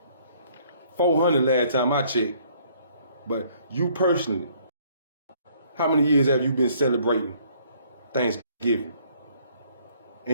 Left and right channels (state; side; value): inverted; both; correlation -0.61